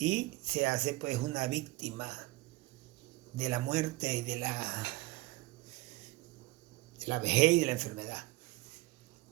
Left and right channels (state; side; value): quieter; left; 20.2 dB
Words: se hace pues una víctima de la muerte y de la vejez y de la enfermedad.